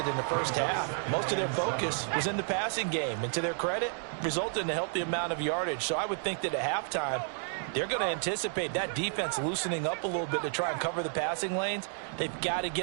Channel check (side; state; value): left; silent; 57 dB below the other